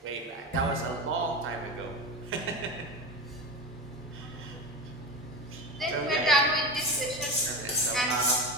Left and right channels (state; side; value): normal; both; correlation 0.24